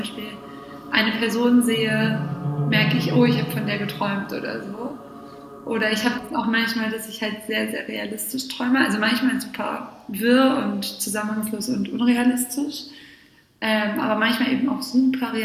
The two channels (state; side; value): identical; both; correlation 1.00